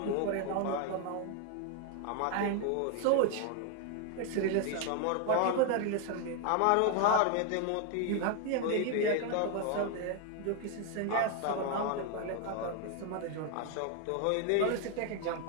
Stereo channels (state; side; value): different; both; correlation 0.00